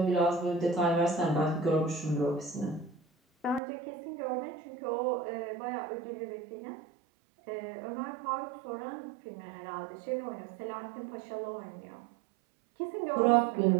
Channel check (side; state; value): left; drops out; at 3.6 s